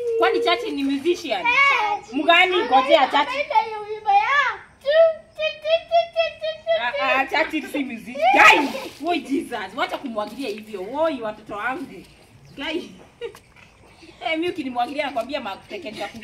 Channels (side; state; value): both; identical; correlation 1.00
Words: Churchill ni musician. Mgani ngojea Churchill. Churchill si musician. Guys, woi Jesus, wacha kumwagilia hivyo. Woi watoto wangu. Guys. Mimi ukinimwagilia nakwambia matekenya